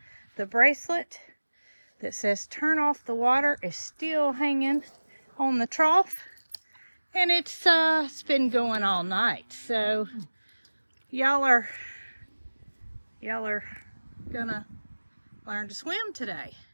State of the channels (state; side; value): inverted; both; correlation -1.00